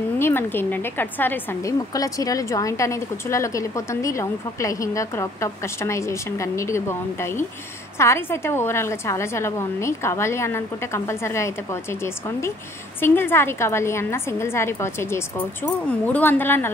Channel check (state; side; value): normal; both; correlation 0.59